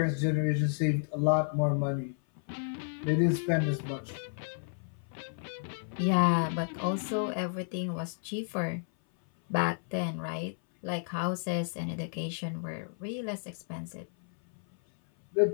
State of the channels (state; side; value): silent; right; 57 dB below the other